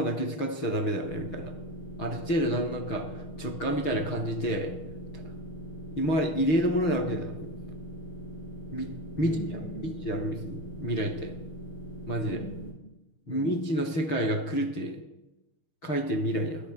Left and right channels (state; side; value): late; right; 6.5 ms